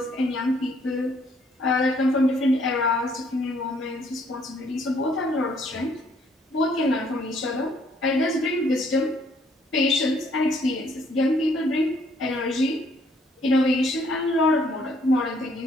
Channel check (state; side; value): normal; both; correlation 0.65